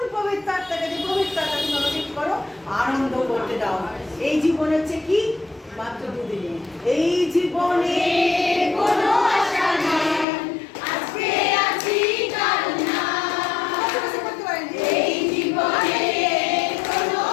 পবিত্র আত্মাকে, যে পবিত্র আত্মা তুমি আমাকে কি করো, আনন্দ করতে দাও। এই জীবন হচ্ছে কি মাত্র দুদিনে, এই জীবনে কোনো আশা নাই, আজকে আছি কাল না, করতে পারিনি। এই জীবনে কোনো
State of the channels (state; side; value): drops out; right; at 10.2 s